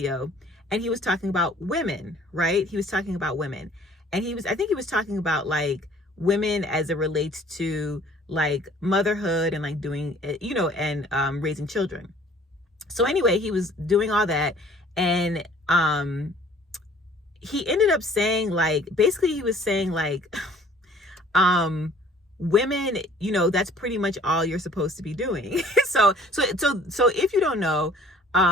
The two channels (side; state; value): both; normal; correlation 0.54